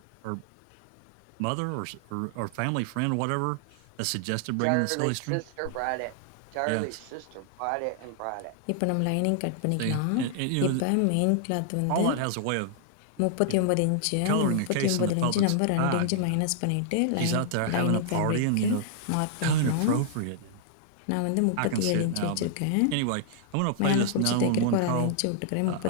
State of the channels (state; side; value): different; both; correlation -0.01